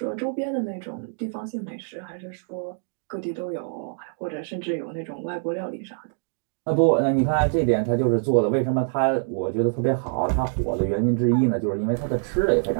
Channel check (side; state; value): left; silent; 62 dB below the other